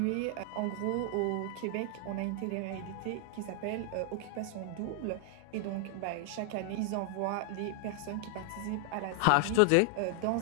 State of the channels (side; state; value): both; different; correlation 0.00